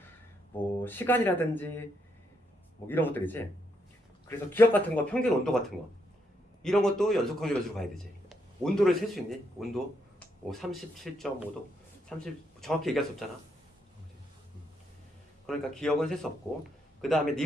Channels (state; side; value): normal; both; correlation 0.77